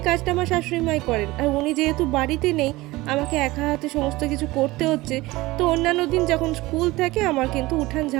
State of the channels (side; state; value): left; quieter; 19.8 dB